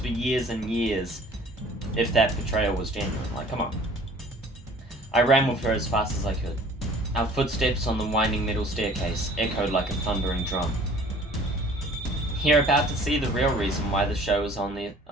years and years if that betrayal was genuine? Like, come on. I ran with her as fast as I could. Our footsteps on the winding metal staircase echoed like a thundering drum. You're about to see the real reason why the show is on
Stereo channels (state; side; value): normal; both; correlation 0.50